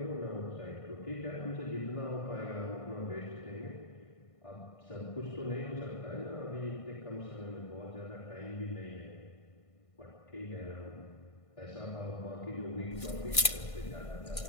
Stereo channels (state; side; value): late; right; 1.5 ms